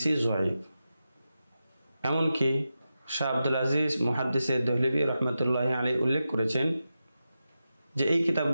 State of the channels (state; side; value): inverted; both; correlation -0.90